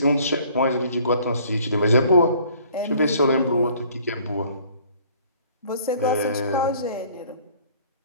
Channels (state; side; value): inverted; both; correlation -0.56